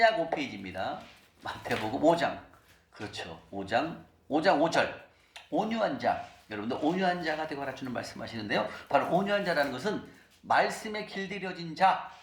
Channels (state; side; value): identical; both; correlation 1.00